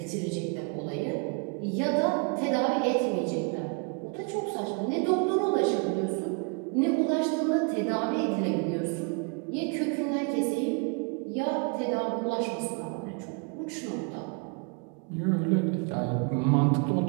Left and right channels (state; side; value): quieter; left; 35.4 dB